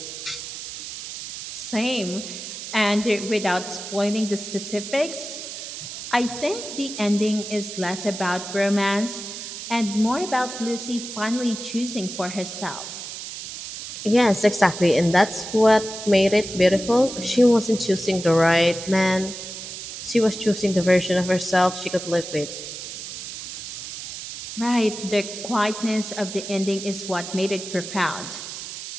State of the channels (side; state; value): right; noise; hiss, 9 dB below the sound